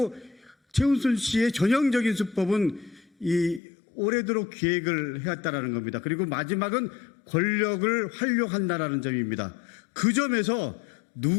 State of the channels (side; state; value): right; drops out; at 3.6 s